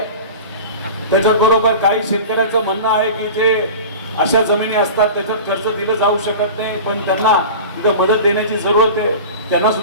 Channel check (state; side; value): inverted; both; correlation -0.35